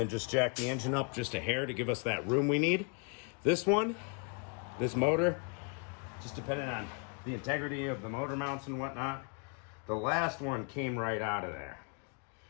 just jack the engine up just a hair to give us that room we need. This motor, just depending on the integrity of the motor mounts and whatnot, the last one came right out of there.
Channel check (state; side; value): quieter; right; 36.0 dB